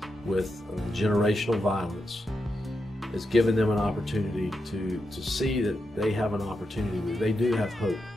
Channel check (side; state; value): both; normal; correlation 0.86